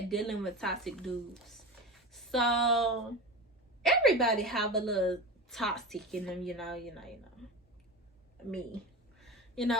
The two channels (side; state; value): both; normal; correlation 0.27